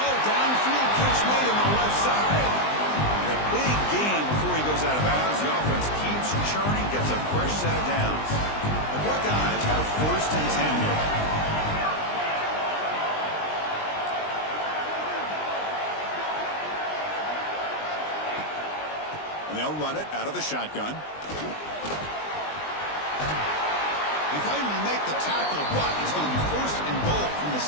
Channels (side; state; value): right; late; 20 ms